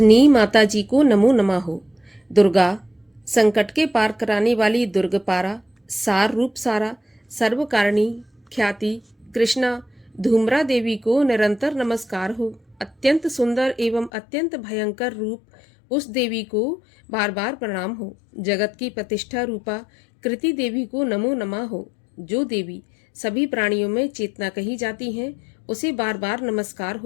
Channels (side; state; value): right; drops out; at 14.1 s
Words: माता जी को नमो नमः हो। दुर्गा संकट के पार कराने वाली दुर्गपारा, सार रूप सारा, सर्वकारिणी ख्याति कृष्णा धूम्रा देवी को निरंतर नमस्कार हो। अत्यंत सुंदर एवं अत्यंत भयंकर रूप उस देवी को बार बार प्रणाम हो। जगत की प्रतिष्ठा रूपा कृति देवी को नमो नमः हो। जो देवी सभी प्राणियों में चेतना कही जाती हैं, उसे बार बार नमस्कार